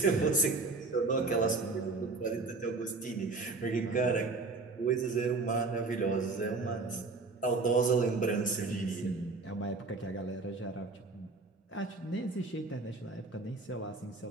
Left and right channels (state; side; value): quieter; left; 3.8 dB